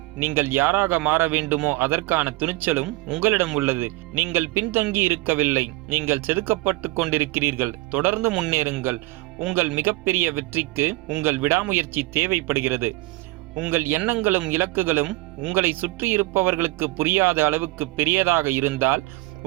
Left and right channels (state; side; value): quieter; left; 20.9 dB